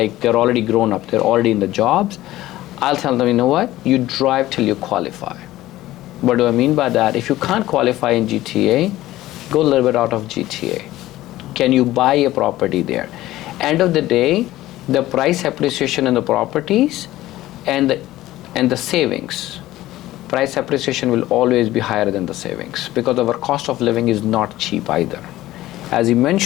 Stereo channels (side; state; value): right; quieter; 15.8 dB